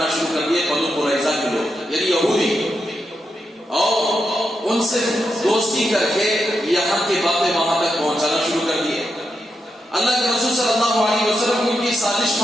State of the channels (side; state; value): both; normal; correlation 0.85